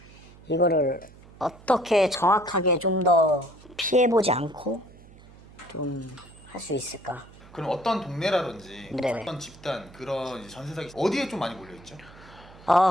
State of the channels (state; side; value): noise; right; hum, 22 dB below the sound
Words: 이거를 어떻게 정확하게 좀 더 피해보지 않고 좀 할 수 있을까? 그럼 어떤 동네라든지 네네. 어떤 집단 그런 이제 전세 사기 어디에 좀 많이 몰려있죠?